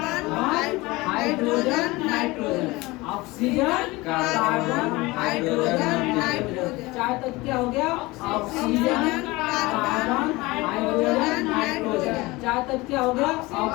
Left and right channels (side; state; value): right; quieter; 21.8 dB